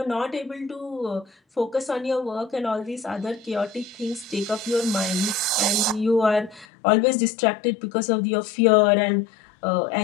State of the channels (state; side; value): drops out; right; at 6.7 s